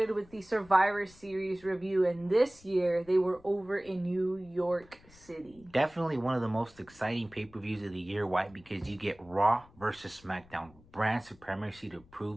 with the Survivor Series review, and this year they were over in New York City. Definitely one of the most exciting pay-per-views of the year. Why? Because you get Raw versus SmackDown. Brand supremacy to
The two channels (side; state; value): left; noise; rumble, 25 dB below the sound